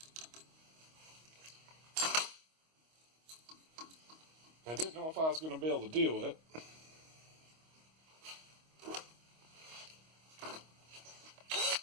I didn't know if I was going to be able to deal with it.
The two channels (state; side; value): late; left; 25 ms